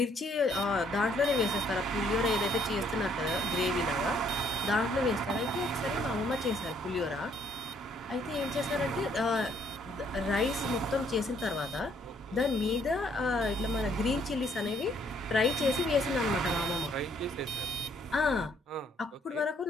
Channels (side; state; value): both; normal; correlation 0.67